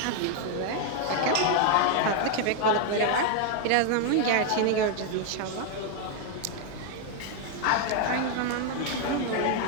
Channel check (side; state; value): both; different; correlation 0.00